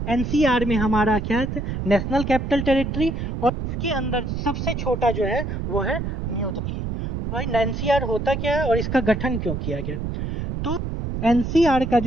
एनसीआर में हमारा क्या है, नेशनल कैपिटल टेरिटरी, और इसके अंदर सबसे छोटा जो है वो है न्यू दिल्ली। भाई एनसीआर होता क्या है और इसका गठन क्यों किया गया? तो एनसीआर का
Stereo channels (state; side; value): noise; right; rumble, 4 dB below the sound